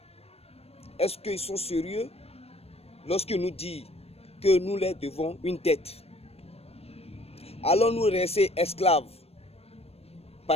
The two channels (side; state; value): right; late; 0.29 ms